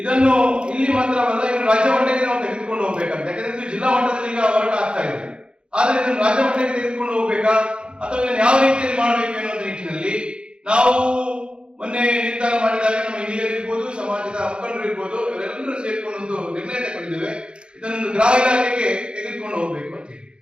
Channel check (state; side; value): late; left; 0.054 ms